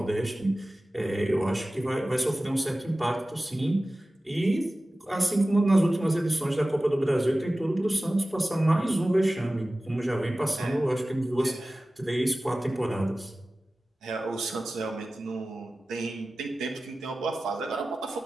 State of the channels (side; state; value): both; normal; correlation 0.96